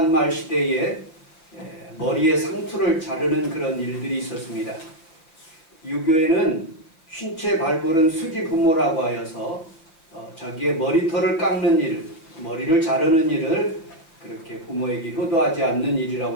시대에 머리에 상투를 자르는 그런 일들이 있었습니다. 유교에는 쉰채 발부른 수지 부모라고 하여서 자기의 머리털을 깎는 일, 머리를 자르는 일을 그렇게 부모에게 효도하지 않는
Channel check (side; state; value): right; late; 6.0 ms